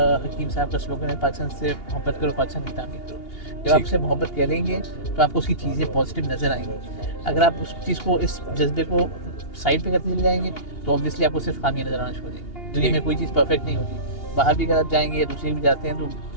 हकीम साहब का स्लोगन है, पाकिस्तान से मोहब्बत करो, पाकिस्तान की तामीर करो। जब आप उससे मोहब्बत करेंगे तो आपको उसकी चीज़ें पॉजिटिव नज़र आएंगी। अगर आप उस चीज़ को, इस जज्बे को साइड पे करते चले जाएंगे तो ऑब्वियसली आपको सिर्फ खामियां नज़र आना शुरू हो जाएंगी। दुनिया में कोई चीज़ परफेक्ट नहीं होती, बाहर भी अगर आप जाएंगे या दूसरे भी जाते हैं तो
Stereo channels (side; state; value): right; late; 2.8 ms